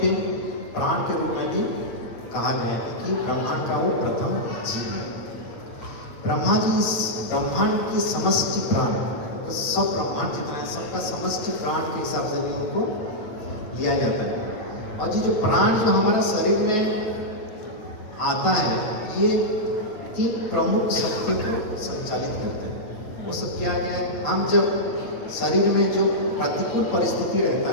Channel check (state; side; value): late; right; 8.8 ms